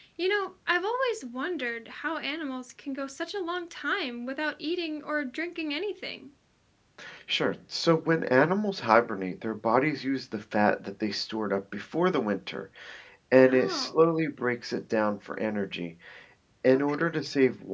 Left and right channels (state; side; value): identical; both; correlation 1.00